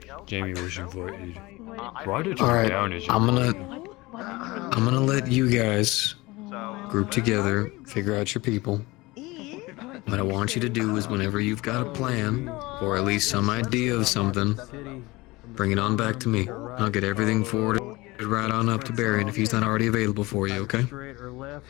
Jamie was invited. Write it All right, down as I'm gonna let you guys group together, figure out your people. What I want you to do is whenever you've got a plan, or at least some idea of something, bring it on back to me. I'll get everything forwarded right on up to Barry if he's not already available for you, okay?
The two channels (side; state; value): right; quieter; 21.6 dB